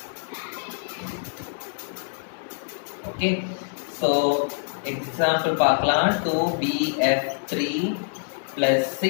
Okay, so example பார்க்கலாம். 2BF3 plus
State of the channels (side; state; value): right; silent; digital silence